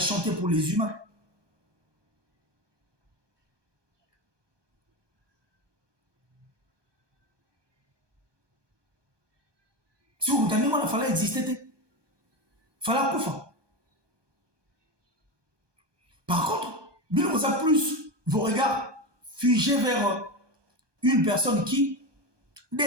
pour les humains. Si vous entendez, il fallait exister. Il fallait couper. Par contre, nous avons plus vos regards figés vers une personne qui,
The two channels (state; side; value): late; left; 1.2 ms